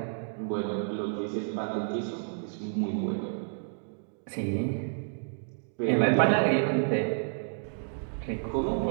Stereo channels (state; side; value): silent; left; digital silence